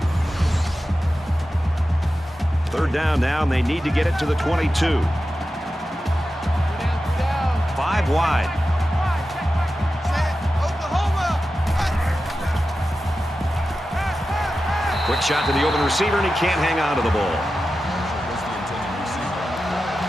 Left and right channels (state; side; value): normal; both; correlation 0.92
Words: Third down now, and they need to get it to the 22. 5 wide. Quick shot to the open receiver, and he can't hang on to the ball. Was the intended receiver on the play.